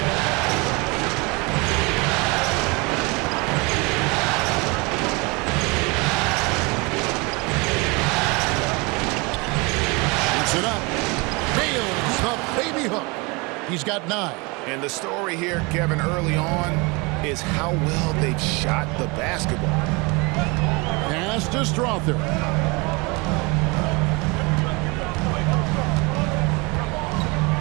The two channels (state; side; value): quieter; left; 27.6 dB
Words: It up. Nails the baby hook. He's got 9. And the story here, Kevin, early on is how well they've shot the basketball. Pass to Strother.